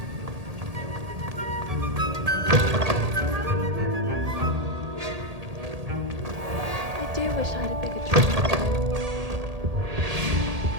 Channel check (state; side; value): late; left; 1.8 ms